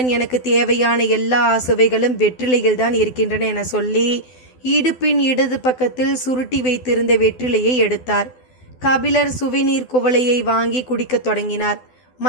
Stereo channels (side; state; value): right; late; 12 ms